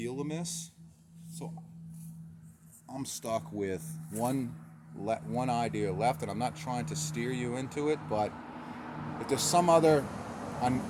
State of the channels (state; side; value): identical; both; correlation 1.00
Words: a miss. So I'm stuck with one idea left, and I'm not trying to steer you into it, but if there's some other